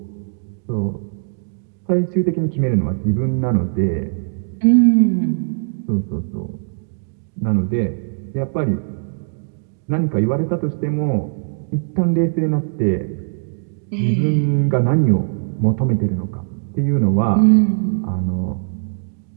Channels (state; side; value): silent; left; digital silence